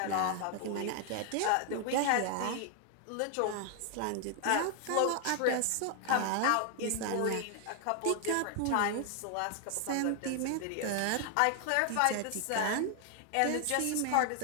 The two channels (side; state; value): both; different; correlation 0.00